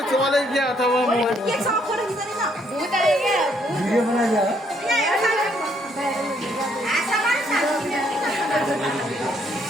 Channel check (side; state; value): both; normal; correlation 0.70